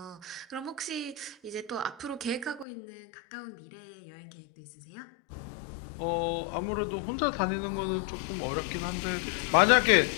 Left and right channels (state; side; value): drops out; right; at 2.7 s